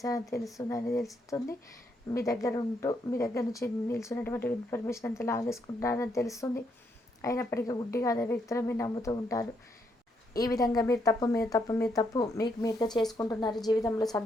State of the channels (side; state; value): both; normal; correlation 0.76